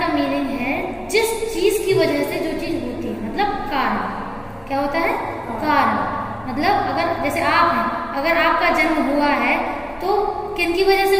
का मीनिंग है जिस चीज की वजह से जो चीज होती है, मतलब कारण। क्या होता है? कारण। मतलब अगर जैसे आप हैं, अगर आपका जन्म हुआ है तो किन की वजह से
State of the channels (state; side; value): identical; both; correlation 1.00